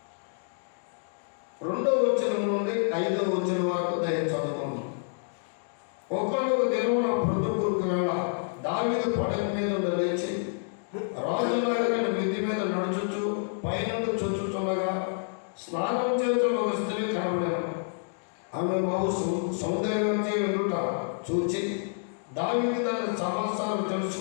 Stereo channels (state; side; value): silent; right; digital silence